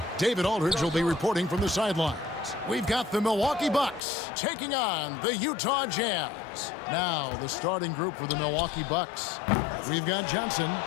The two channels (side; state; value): right; drops out; at 4.0 s